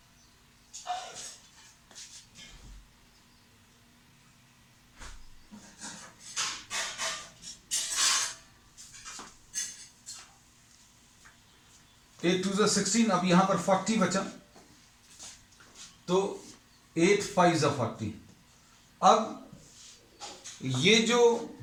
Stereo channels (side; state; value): both; identical; correlation 1.00